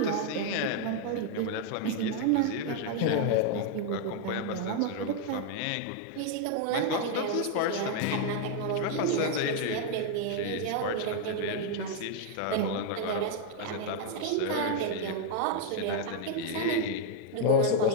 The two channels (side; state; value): both; different; correlation 0.00